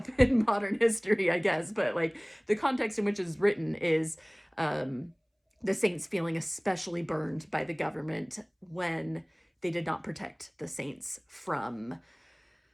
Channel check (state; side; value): identical; both; correlation 1.00